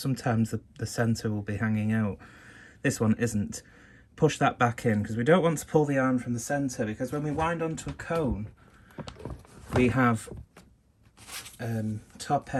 the centre will be hanging out. This one isn't. Push that back in, because we don't want to pull the yarn from the centre, because when we wind onto a cone, we have top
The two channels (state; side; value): identical; both; correlation 1.00